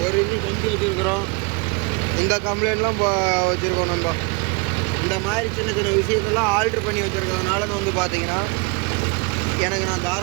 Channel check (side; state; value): left; quieter; 29.8 dB